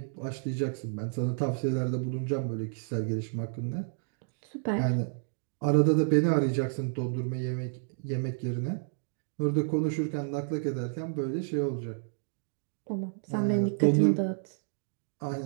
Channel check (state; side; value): silent; left; digital silence